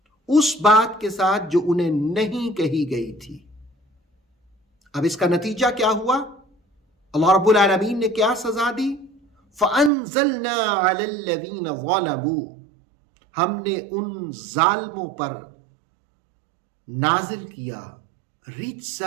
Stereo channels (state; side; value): drops out; left; at 9.9 s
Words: اس بات کے ساتھ جو انہیں نہیں کہی گئی تھی۔ اب اس کا نتیجہ کیا ہوا؟ اللہ رب العالمین نے کیا سزا دی؟ فَأَنزَلْنَا عَلَى الَّذِينَ ظَلَمُوا، ہم نے ان ظالموں پر نازل کیا